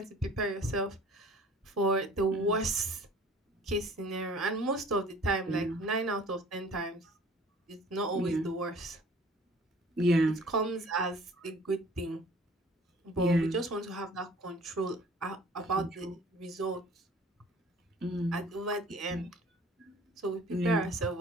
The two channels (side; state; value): both; normal; correlation 0.50